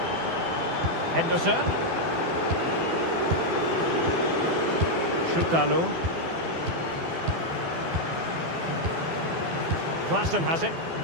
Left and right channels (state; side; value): late; left; 12 ms